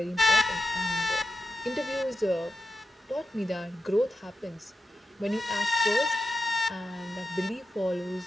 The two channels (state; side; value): normal; both; correlation 0.90